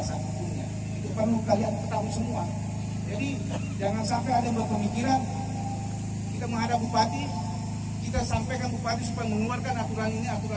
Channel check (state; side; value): identical; both; correlation 1.00